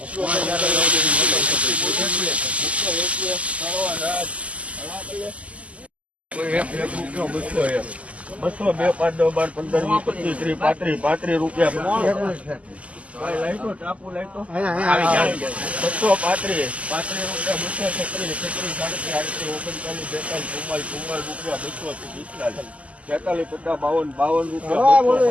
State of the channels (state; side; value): late; left; 0.067 ms